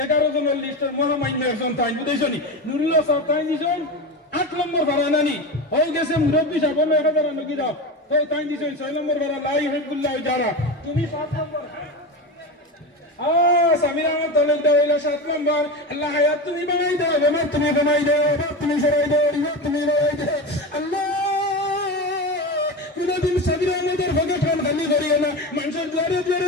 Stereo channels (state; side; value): normal; both; correlation 0.22